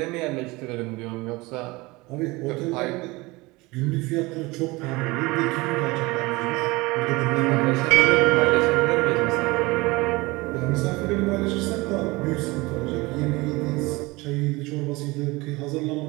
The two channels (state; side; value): quieter; left; 22.8 dB